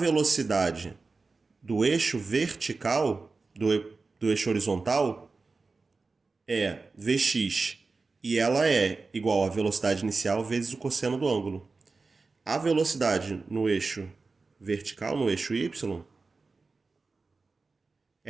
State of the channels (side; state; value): left; quieter; 4.0 dB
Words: do eixo vertical, do eixo horizontal, é Vx, e ela é igual à velocidade inicial vezes o cosseno do ângulo. A velocidade no eixo vertical, no eixo y,